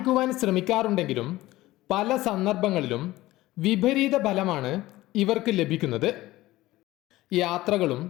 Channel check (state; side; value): quieter; right; 17.4 dB